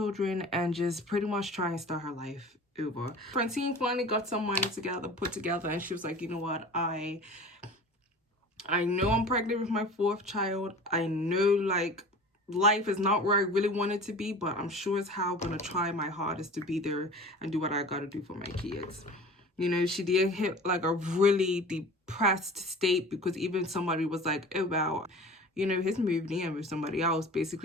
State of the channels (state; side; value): normal; both; correlation 0.40